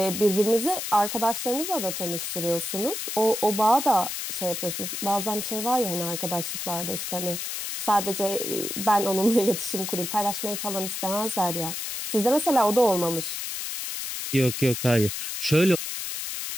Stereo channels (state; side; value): noise; left; hiss, 5 dB below the sound